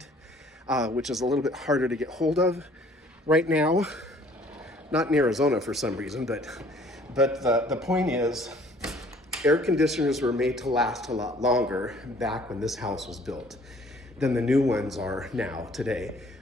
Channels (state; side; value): normal; both; correlation 0.57